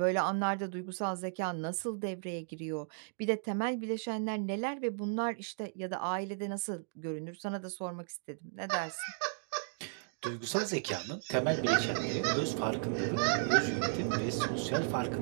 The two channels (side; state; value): left; silent; digital silence